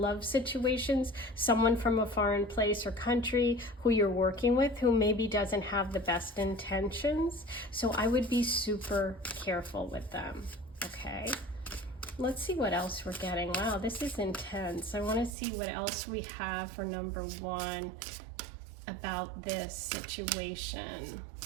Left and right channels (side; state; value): left; drops out; at 15.4 s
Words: situations, someone from a foreign place or country who you're working with who maybe doesn't have the best intentions. So I would be super careful with them, okay? Let's see what else we're getting. Wow, this is intense. I want to see what else we have for number 1 about this situation.